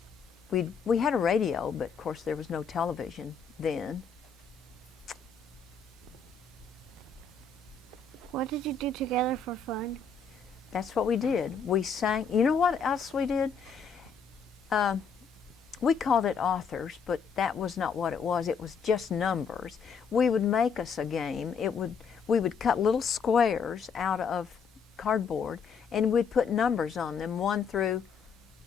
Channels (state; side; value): quieter; right; 5.6 dB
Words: we had a radio, but of course there was no television then. What did you do together for fun? That's what we did. We sang. You know what else we did? We called it authors, but that was not what it was. It was just numbers. We would make us a game. We would cut little squares out of cardboard, and we'd put numbers on them, 1 through